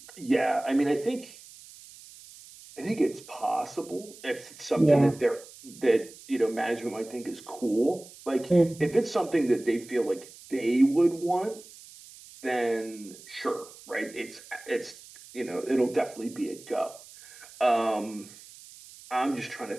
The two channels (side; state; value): right; noise; hiss, 20 dB below the sound